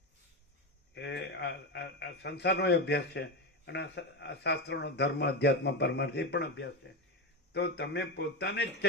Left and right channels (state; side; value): normal; both; correlation 0.17